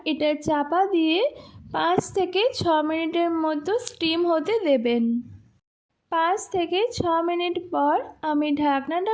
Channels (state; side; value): identical; both; correlation 1.00